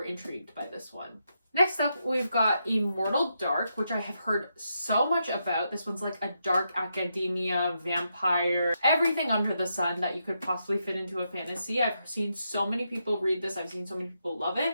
intrigued by this one. Next up, we've got Immortal Dark, which I have heard so much about. This one's like a dark academia, vampire, everything under the sun that you could possibly fit into a fantasy. I've seen so many people read this. I've seen so many people love it.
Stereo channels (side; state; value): both; inverted; correlation -0.82